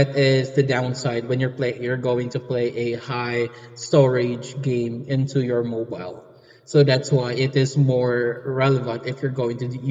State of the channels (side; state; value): both; identical; correlation 1.00